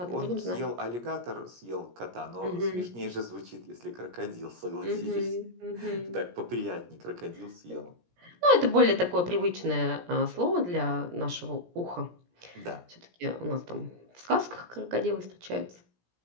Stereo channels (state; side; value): late; left; 17 ms